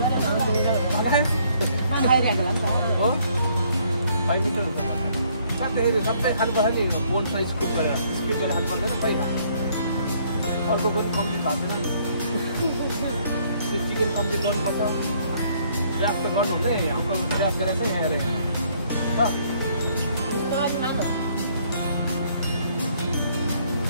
हो 5 मिटर हुन्छ साथै सबै खानुपर्छ नि बोन साइज स्कुप गरेर स्किप गरेर खानु पर्दैन खै अर्को पनि कम्प्लिट भएको छैन त्यो चिकन कम्प्लिट गर्नुपर्छ प्रयास त गर्नु हुँदै अङ्कल प्रयास गरेर चाहिँ यहाँ हेरेँ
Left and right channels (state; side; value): inverted; both; correlation -0.65